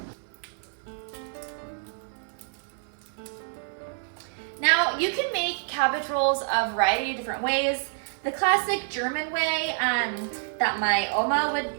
Now, you can make cabbage rolls a variety of different ways. The classic German way that my Oma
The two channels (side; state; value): left; silent; digital silence